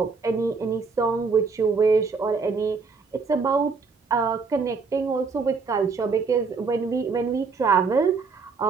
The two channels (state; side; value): quieter; left; 4.8 dB